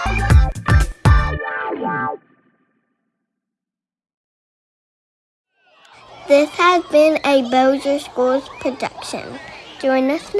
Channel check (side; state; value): both; identical; correlation 1.00